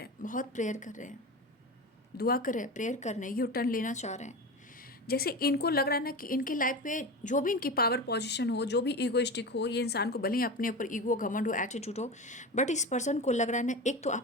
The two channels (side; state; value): both; normal; correlation 0.26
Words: हैं, बहुत प्रेयर कर रहे हैं, दुआ कर रहे हैं, प्रेयर कर रहे हैं, यू टर्न लेना चाह रहे हैं। जैसे इनको लग रहा है ना कि इनके लाइफ में जो भी इनकी पावर पोजीशन हो, जो भी ईगोइस्टिक हो, ये इंसान को भले ही अपने ऊपर ईगो, घमंड हो, एटीट्यूड हो, बट इस पर्सन को लग रहा है ना, एक तो